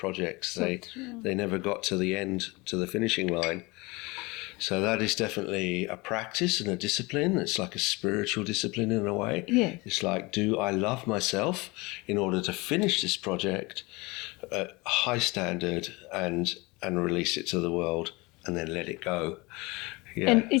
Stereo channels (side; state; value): right; quieter; 24.6 dB